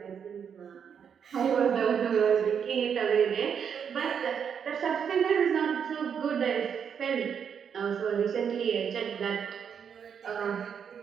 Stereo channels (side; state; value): left; quieter; 7.4 dB